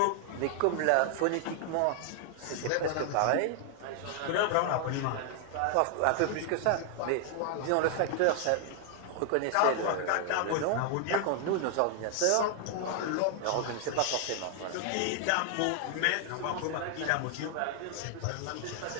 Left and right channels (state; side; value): different; both; correlation 0.00